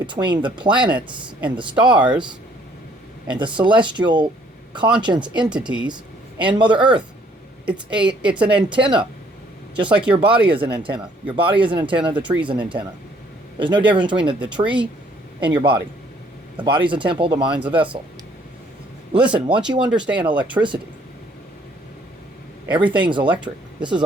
the planets and the stars and the celestial conscience entities and Mother Earth. It's an antenna, just like your body is an antenna. Your body is an antenna, the tree is an antenna. There's no difference between the tree and your body. The body's a temple, the mind's a vessel. Listen, once you understand electricity, everything's electric. This is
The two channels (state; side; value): normal; both; correlation 0.63